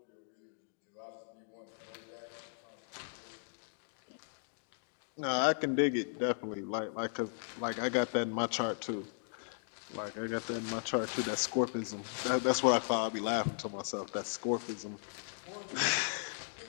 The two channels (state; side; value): silent; right; digital silence